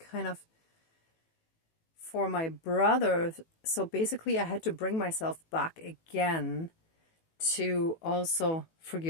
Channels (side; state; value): right; late; 18 ms